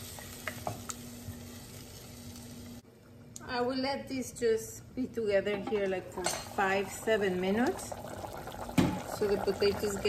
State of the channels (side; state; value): both; identical; correlation 1.00